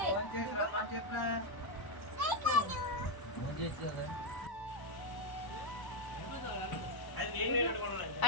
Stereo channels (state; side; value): late; right; 1.1 ms